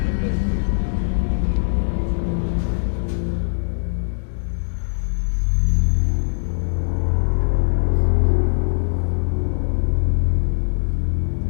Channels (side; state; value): right; silent; digital silence